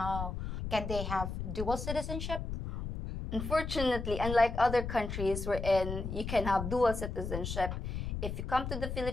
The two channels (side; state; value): left; noise; rumble, 5 dB below the sound